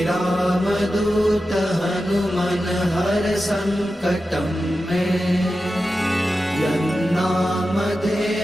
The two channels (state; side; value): normal; both; correlation 0.92